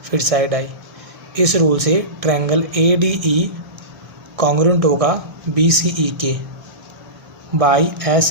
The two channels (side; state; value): left; late; 1.6 ms